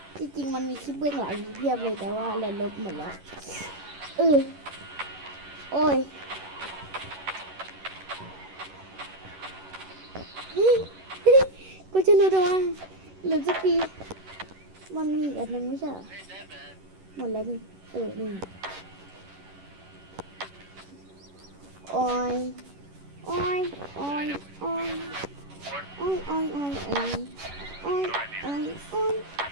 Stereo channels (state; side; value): late; left; 11 ms